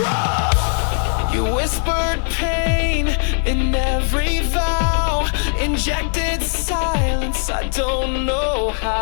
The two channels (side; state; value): right; silent; digital silence